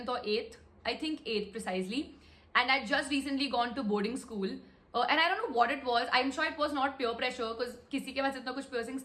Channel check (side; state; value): both; identical; correlation 1.00